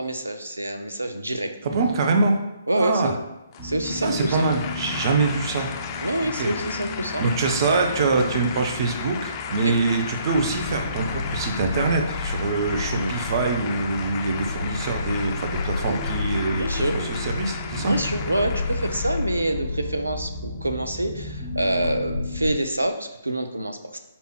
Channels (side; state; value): both; inverted; correlation -0.69